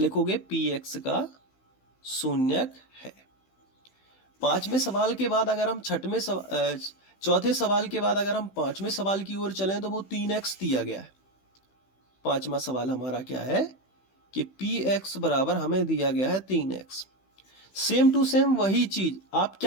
px का शून्यक है। पांचवें सवाल के बाद अगर हम चौथे सवाल के बाद अगर हम पांचवें सवाल की ओर चलें तो वो 3x दिया गया है। पांचवा सवाल हमारा क्या है कि px बराबर हमें दिया गया है 3x। सेम टू सेम वही चीज आप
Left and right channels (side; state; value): right; late; 16 ms